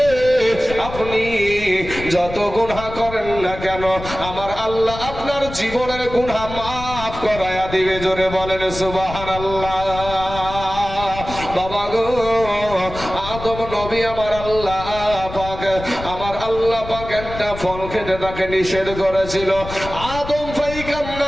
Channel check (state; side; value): noise; left; rumble, 11 dB below the sound